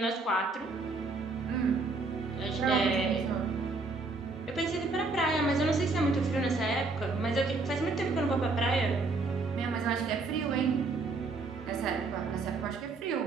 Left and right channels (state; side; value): quieter; left; 3.7 dB